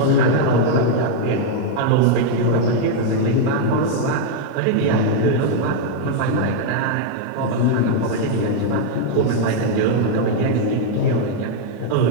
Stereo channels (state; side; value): different; both; correlation 0.00